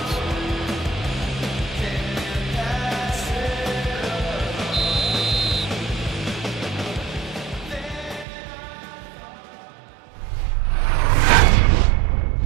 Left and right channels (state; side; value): drops out; left; at 8.2 s